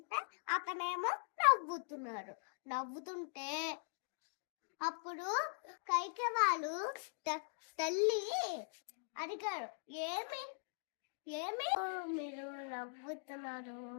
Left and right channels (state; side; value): silent; right; digital silence